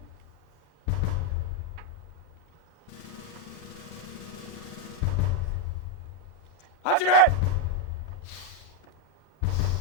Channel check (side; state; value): both; normal; correlation 0.03